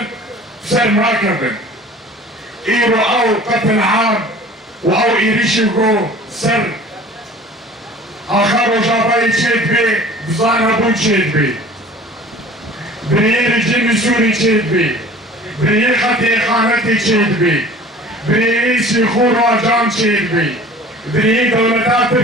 سر مراكبن ايرو او قتل عام واو ايريشيغو سر اخر جاباي تشيد بي بزانا بو تشيد بي بريير جيمي سوري تشيد بي بريير خطي خانتي تشيد بي بريير سيخور واجام تشيد بي بريير دولتا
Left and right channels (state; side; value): normal; both; correlation 0.45